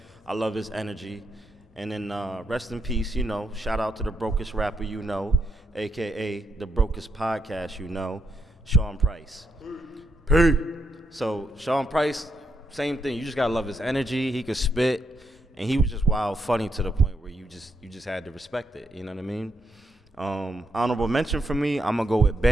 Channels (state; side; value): normal; both; correlation 0.79